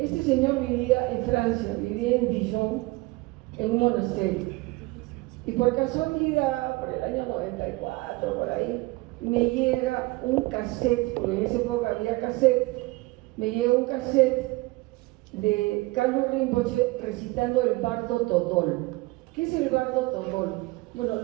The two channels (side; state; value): left; quieter; 22.4 dB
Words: señor vivía en Francia, vivía en Dijon, en un monasterio. Y por casualidad, por el año 94, por ahí, me llega un cassette, porque en esa época había cassette, me llega un cassette de Kalu Rinpoche recitando el Bardo Todol. ¿Qué es el Bardo Todol? Bueno,